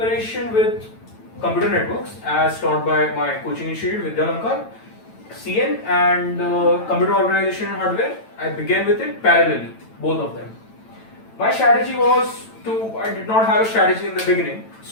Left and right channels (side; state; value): right; late; 9.0 ms